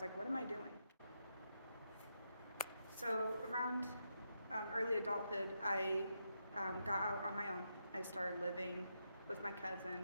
like, what am I doing? So around early adulthood, I got out on my own. I started living with my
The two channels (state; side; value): inverted; both; correlation -0.83